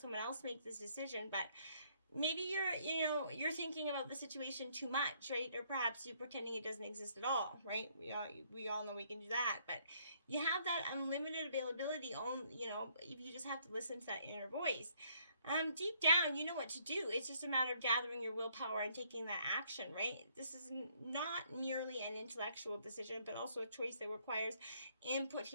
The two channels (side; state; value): both; inverted; correlation -0.66